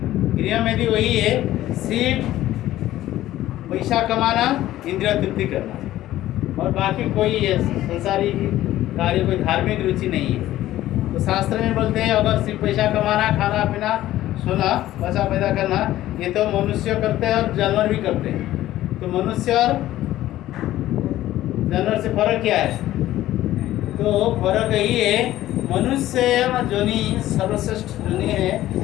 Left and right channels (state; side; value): quieter; right; 14.4 dB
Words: गृह मेदी वही है, सिर्फ पैसा कमाना, इंद्रिय तृप्ति करना, और बाकी कोई संसारी कार्य, कोई धार्मिक रुचि नहीं है। तो शास्त्र में बोलते हैं अगर सिर्फ पैसा कमाना, खाना पीना, सोना, पैसा पैदा करना, ये तो मनुष्य करते हैं और जानवर भी करते हैं। तो मनुष्य और जानवर से फर्क क्या है? तो फर्क यही है, मनुष्य जोनि सर्वश्रेष्ठ जोनि है,